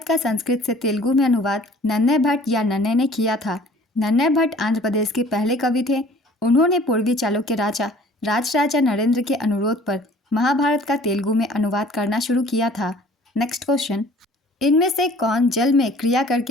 का संस्कृत से तेलुगु में अनुवाद नन्नय भट्ट या नन्नय ने किया था। नन्नय भट्ट आंध्र प्रदेश के पहले कवि थे। उन्होंने पूर्वी चालुक्य राजा राजराजा नरेंद्र के अनुरोध पर महाभारत का तेलुगु में अनुवाद करना शुरू किया था। नेक्स्ट क्वेश्चन, इनमें से कौन जल में क्रिया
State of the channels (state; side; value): normal; both; correlation 0.51